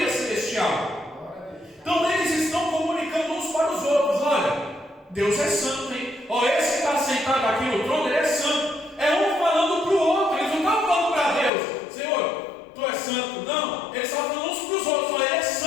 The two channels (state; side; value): drops out; right; at 11.5 s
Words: celestial. Então eles estão comunicando uns para os outros: olha, Deus é santo, hein? Esse que está sentado aqui no trono, ele é santo. É um falando para o outro. Eles não estão falando para Deus: Senhor, Tu és santo. Não, eles estavam falando uns para os outros: ele é